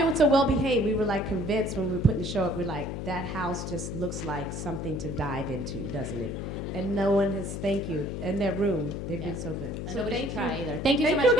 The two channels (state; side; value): noise; left; hum, 5 dB below the sound